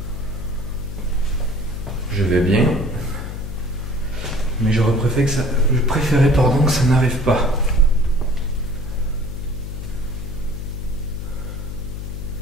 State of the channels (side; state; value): left; noise; hum, 7 dB below the sound